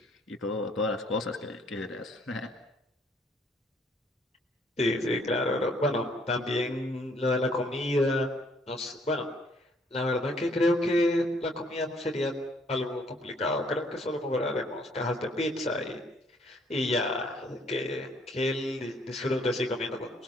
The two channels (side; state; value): both; normal; correlation 0.65